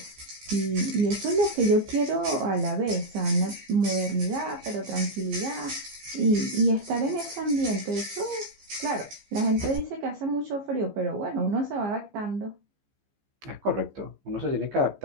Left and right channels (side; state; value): left; late; 15 ms